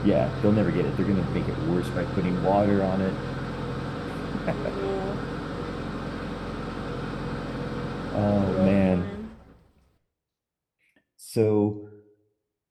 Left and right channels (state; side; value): identical; both; correlation 1.00